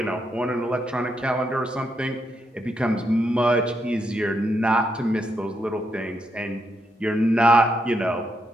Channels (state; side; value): normal; both; correlation 0.80